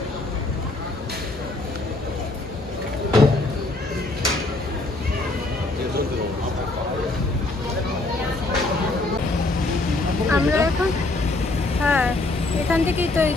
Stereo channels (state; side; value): quieter; right; 3.0 dB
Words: আমরা এখন, হ্যাঁ এখান থেকেই তো, এই